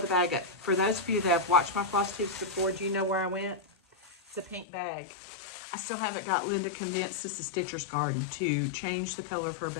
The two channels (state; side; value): drops out; right; at 4.7 s